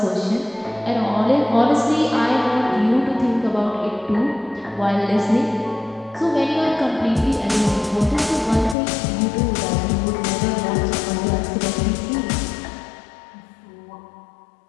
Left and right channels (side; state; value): right; drops out; at 8.8 s